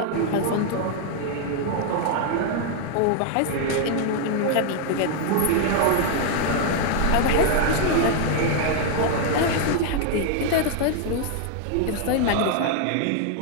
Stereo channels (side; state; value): both; different; correlation 0.00